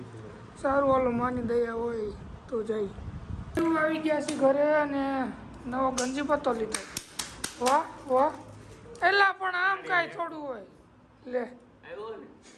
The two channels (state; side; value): identical; both; correlation 1.00